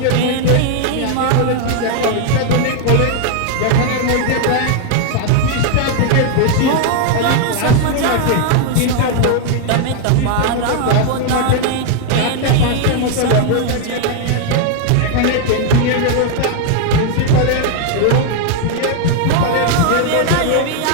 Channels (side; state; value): both; different; correlation 0.00